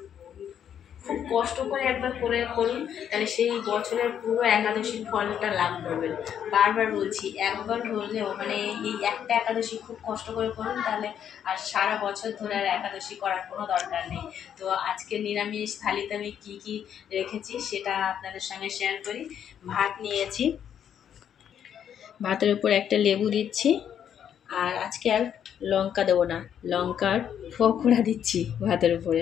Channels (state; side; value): quieter; right; 9.1 dB